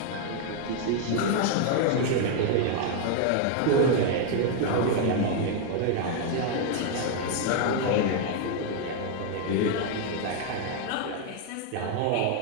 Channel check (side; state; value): both; different; correlation 0.00